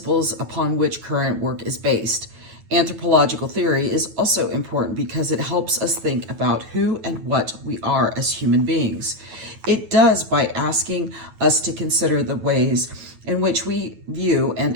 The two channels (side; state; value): left; late; 9.2 ms